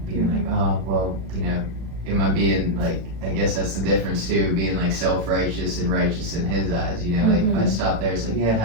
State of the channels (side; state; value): left; late; 36 ms